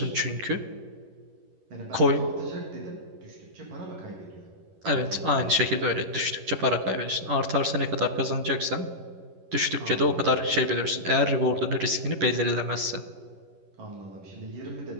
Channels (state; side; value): late; left; 11 ms